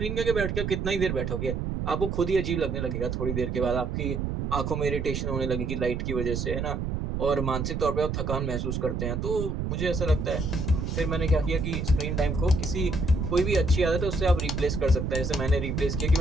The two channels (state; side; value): noise; right; rumble, 2 dB below the sound